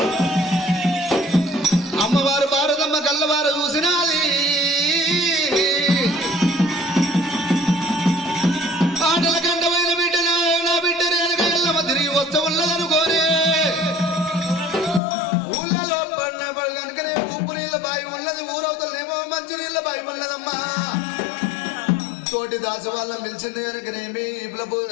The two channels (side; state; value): right; drops out; at 15.0 s